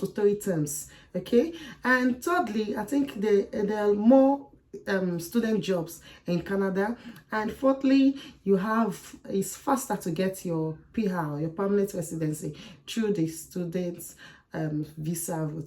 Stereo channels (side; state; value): both; identical; correlation 1.00